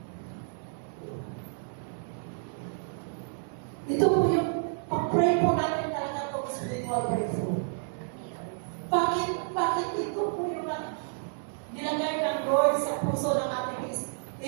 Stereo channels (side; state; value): left; silent; 58 dB below the other